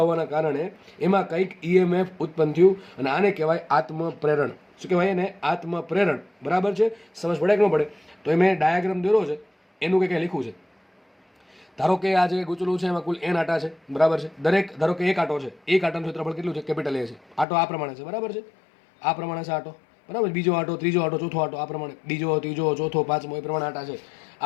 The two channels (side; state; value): right; drops out; at 17.4 s